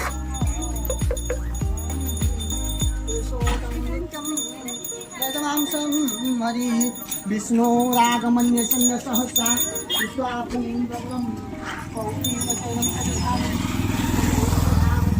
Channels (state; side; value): identical; both; correlation 1.00